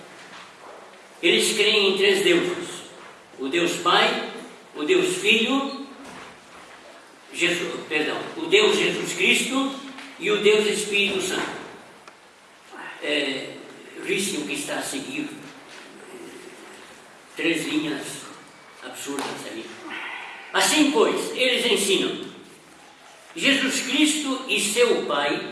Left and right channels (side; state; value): both; identical; correlation 1.00